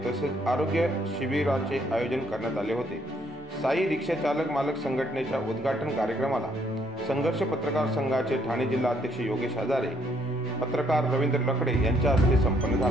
तसेच आरोग्य शिबिराचे आयोजन करण्यात आले होते। साई रिक्षा चालक मालक संघटनेच्या उद्घाटन कार्यक्रमाला संघर्ष पत्रकार संघाचे ठाणे जिल्हा अध्यक्ष योगेश हजारे, पत्रकार रवींद्र लकडे यांच्या हस्ते संपन्न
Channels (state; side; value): normal; both; correlation 0.69